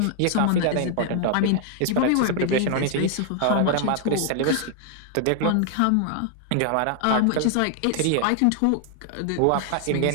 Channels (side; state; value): both; different; correlation 0.00